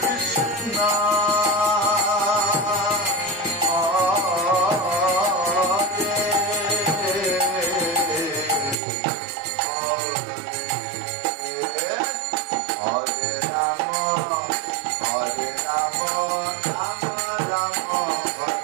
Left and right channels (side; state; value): left; drops out; at 8.8 s